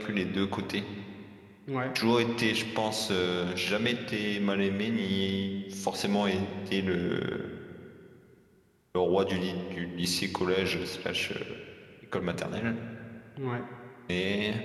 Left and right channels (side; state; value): both; identical; correlation 1.00